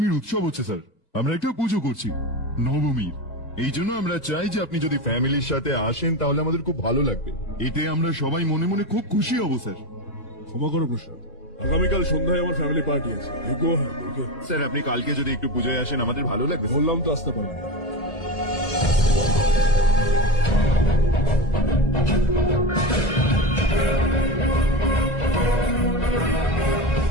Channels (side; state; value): right; late; 2.0 ms